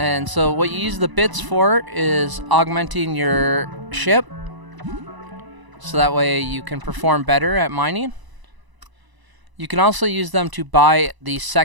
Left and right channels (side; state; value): left; late; 1.0 ms